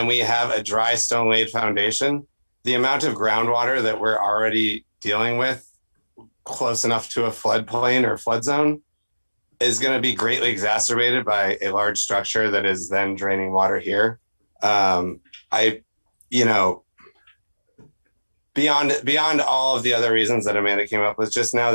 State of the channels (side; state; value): both; inverted; correlation -1.00